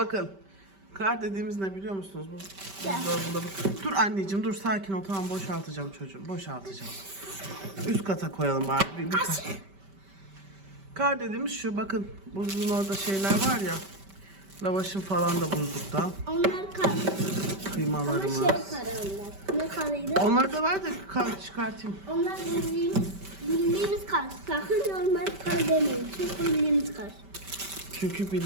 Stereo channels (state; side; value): late; left; 5.1 ms